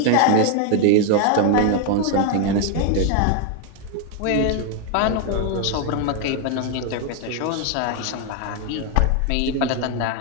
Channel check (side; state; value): both; different; correlation 0.01